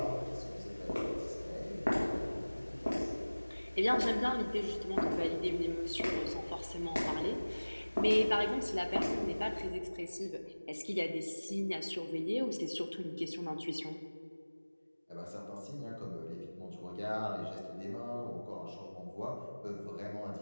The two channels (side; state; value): both; inverted; correlation -1.00